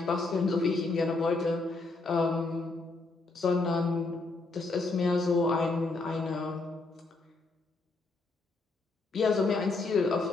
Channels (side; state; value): right; quieter; 3.5 dB